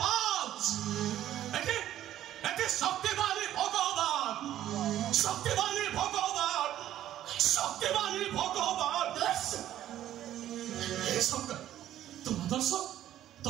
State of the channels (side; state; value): left; quieter; 12.4 dB